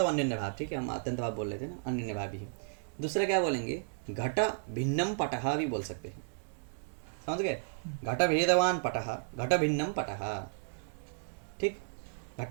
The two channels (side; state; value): left; silent; digital silence